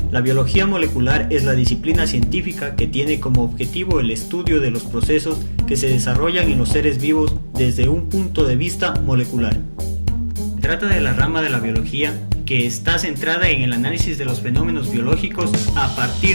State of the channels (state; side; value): inverted; both; correlation -1.00